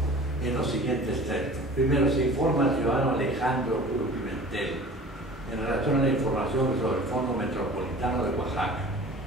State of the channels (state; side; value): normal; both; correlation 0.43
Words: en los siguientes términos. Primero, se informa al ciudadano Alejandro Cruz Pimentel en relación a la información sobre el Fondo Metropolitano de Oaxaca